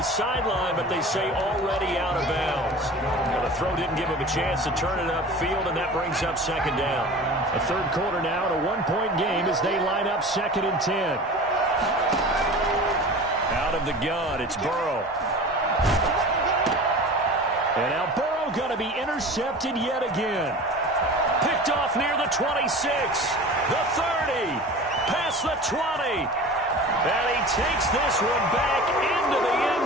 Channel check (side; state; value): both; normal; correlation 0.37